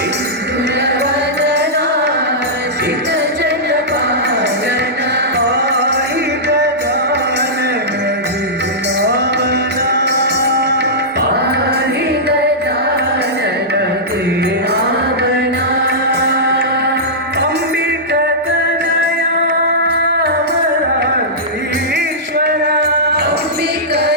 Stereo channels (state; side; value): normal; both; correlation -0.14